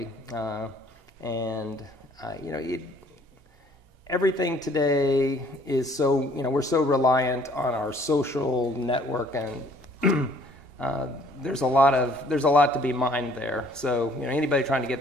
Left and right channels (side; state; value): left; late; 2.8 ms